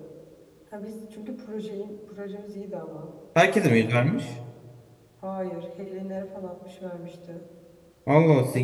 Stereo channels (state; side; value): identical; both; correlation 1.00